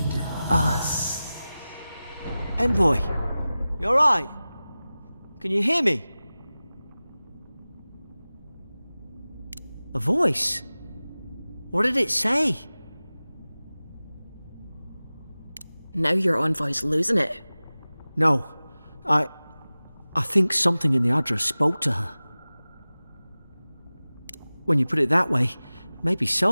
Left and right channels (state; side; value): inverted; both; correlation -0.97